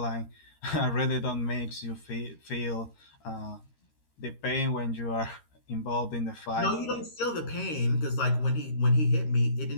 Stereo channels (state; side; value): late; right; 13 ms